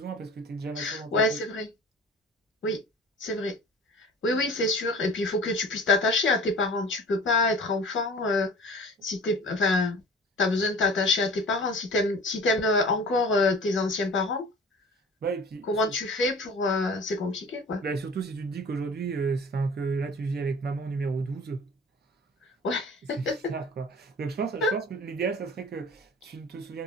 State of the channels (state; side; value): normal; both; correlation 0.42